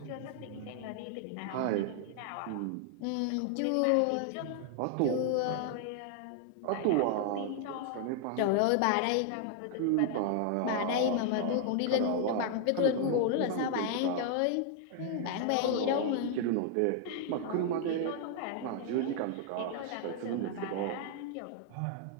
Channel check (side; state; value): both; different; correlation 0.00